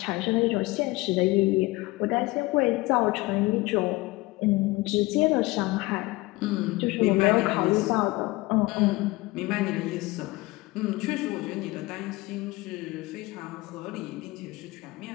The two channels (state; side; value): quieter; right; 21.4 dB